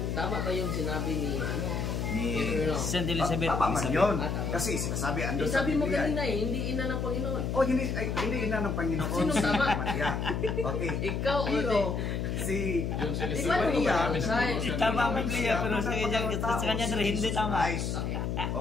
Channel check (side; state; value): left; noise; hum, 1 dB below the sound